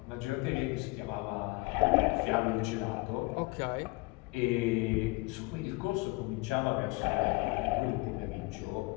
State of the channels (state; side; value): quieter; right; 24.4 dB